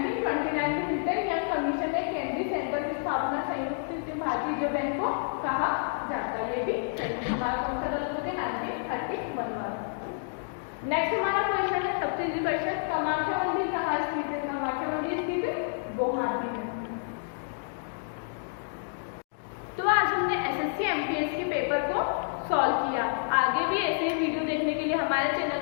में हिल्टन यंग कमीशन ने केंद्रीय सेंटर की स्थापना संयुक्त भारतीय रिजर्व बैंक को कहा जाता है, ये भी सही। हमारा कौन सा गलत होता है? 1931 वाला। नेक्स्ट हमारा क्वेश्चन है, सबसे इजी क्वेश्चन, कामाख्या मंदिर कहाँ स्थित है? कामाख्या मंदिर स्थित है गुवाहाटी में। तो आज हमने एसएससी एमटीएस के पेपर को सॉल्व किया। आगे भी ऐसे वीडियो देखने के लिए हमारे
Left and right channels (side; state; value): right; silent; digital silence